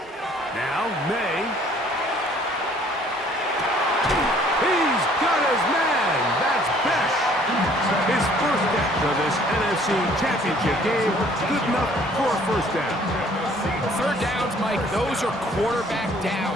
Now, May. He's got his man. That's Besh. His first catch of this NFC Championship game. Good enough for a first down. 3rd downs, Mike, those are quarterback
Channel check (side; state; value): both; normal; correlation 0.58